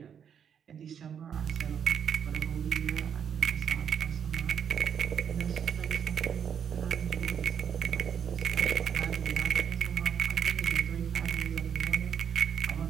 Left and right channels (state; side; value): quieter; left; 8.0 dB